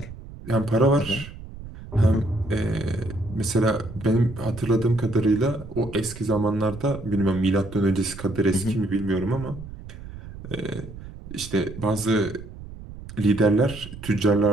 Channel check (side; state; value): right; noise; rumble, 14 dB below the sound